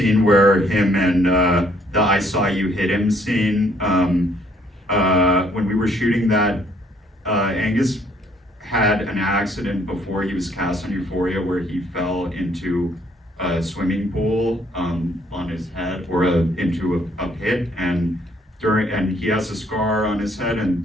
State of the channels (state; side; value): normal; both; correlation 0.65